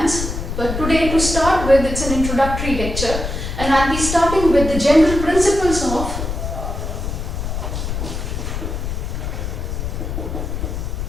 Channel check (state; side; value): noise; left; rumble, 4 dB below the sound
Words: but today to start with it's an introductory lecture and I'll be starting with the general principles of